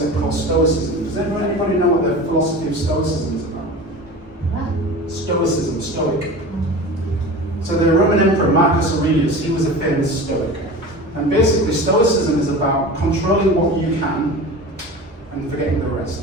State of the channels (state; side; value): normal; both; correlation 0.34